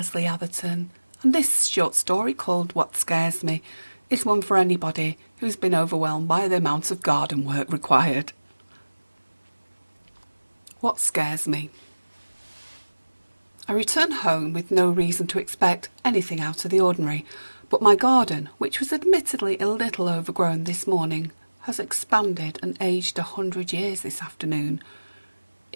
Atherton, and this short story called What Scares Me is one for anybody who's been overwhelmed by the amount of garden work required. What scares me? I return home with no reason to expect anything out of the ordinary, but my garden, which was admittedly a little overgrown this morning, has expanded and aged 100 years this afternoon.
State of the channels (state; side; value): inverted; both; correlation -1.00